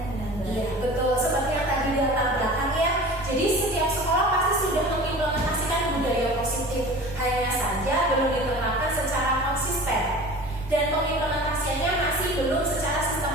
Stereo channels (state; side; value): normal; both; correlation 0.39